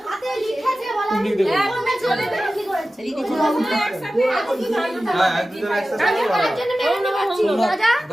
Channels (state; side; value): normal; both; correlation 0.95